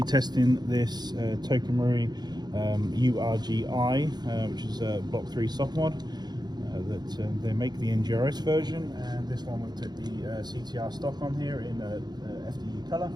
testing this Tokamori URGI, which is a Block 3 soft mod that they make the NGRS version, and this one we've took the CTR Stock on here in FDE colour,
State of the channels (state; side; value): late; left; 0.20 ms